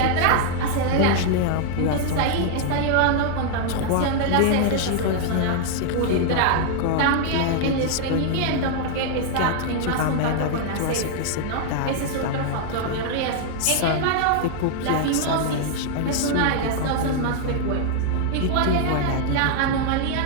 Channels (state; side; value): different; both; correlation 0.00